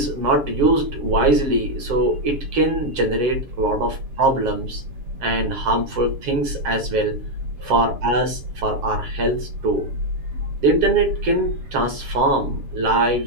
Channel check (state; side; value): late; left; 7.6 ms